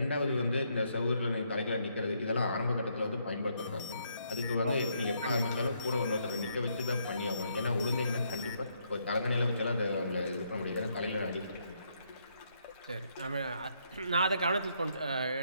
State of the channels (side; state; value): both; inverted; correlation -0.74